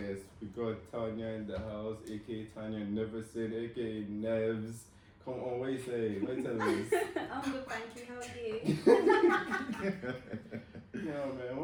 We got Tanya in the house, aka Tanya Neverson, aka Nevs. Come on, what you say? What you tell us? I'm good, thank you. How are you? Yeah,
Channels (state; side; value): identical; both; correlation 1.00